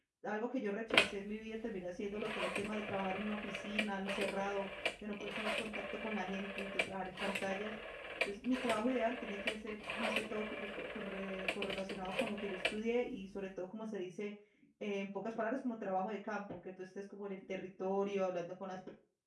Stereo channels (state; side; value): identical; both; correlation 1.00